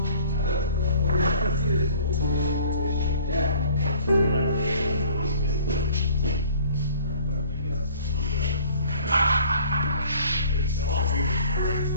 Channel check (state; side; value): inverted; both; correlation -0.52